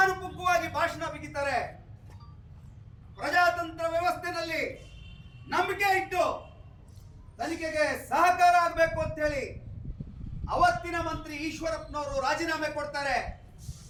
ಭಾಷಣ ಬಿಗಿತಾರೆ. ಪ್ರಜಾತಂತ್ರ ವ್ಯವಸ್ಥೆಯಲ್ಲಿ ನಂಬಿಕೆ ಇಟ್ಟು ತನಿಖೆಗೆ ಸಹಕಾರ ಆಗಬೇಕು ಅಂತ ಹೇಳಿ ಅವತ್ತಿನ ಮಂತ್ರಿ ಈಶ್ವರಪ್ಪನವರು ರಾಜೀನಾಮೆ ಕೊಡ್ತಾರೆ.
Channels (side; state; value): both; identical; correlation 1.00